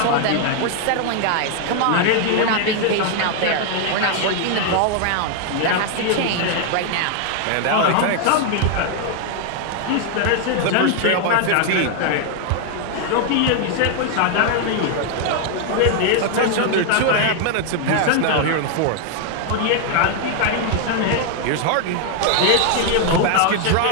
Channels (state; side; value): different; both; correlation 0.00